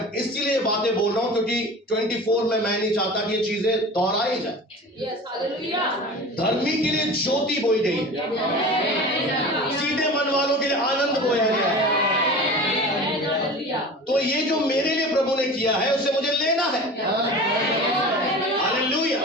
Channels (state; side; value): normal; both; correlation 0.35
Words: इसीलिए बातें बोल रहा हूं क्योंकि 24 में मैं नहीं चाहता कि ये चीजें दोहराई जाए। धर्मी के लिए ज्योति बोई गई, सीधे मन वालों के लिए आनंद बोया गया। तो ये जो मेरे लिए प्रभु ने किया है उसे मुझे लेना है। हालेलुया।